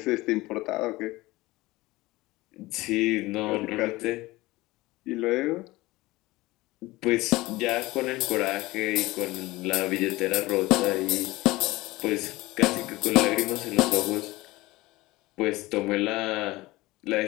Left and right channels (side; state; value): right; quieter; 19.9 dB